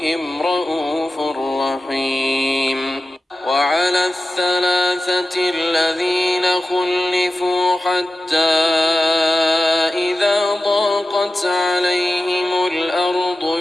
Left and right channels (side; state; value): both; normal; correlation 0.94